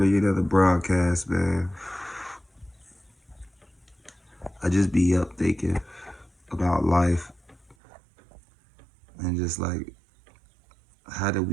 another broadcast, man. I just be up thinking about life and just like, how did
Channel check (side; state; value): left; drops out; at 7.8 s